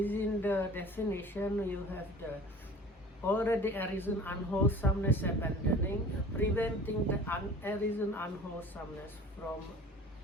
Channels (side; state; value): both; normal; correlation 0.44